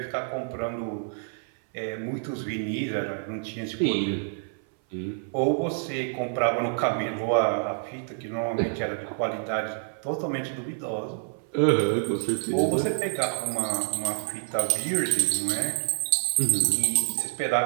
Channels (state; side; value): silent; left; 58 dB below the other